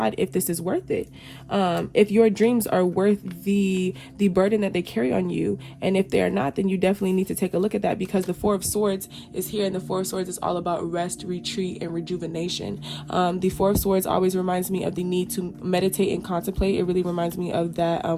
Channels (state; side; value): identical; both; correlation 1.00